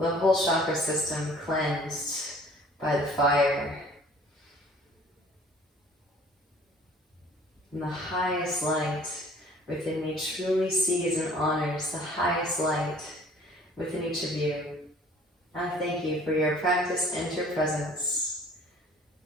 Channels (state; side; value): normal; both; correlation 0.52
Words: whole chakra system cleansed by the fire. And the highest light within me truly sees and honors the highest light within each of you. I thank you for your practice and your presence.